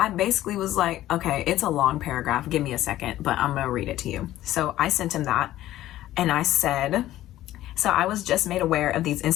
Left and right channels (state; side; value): quieter; right; 14.3 dB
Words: basically was like, okay, it's a long paragraph. Give me a second, but I'm gonna read it to you. So I sent him that, and I said, so I was just made aware of these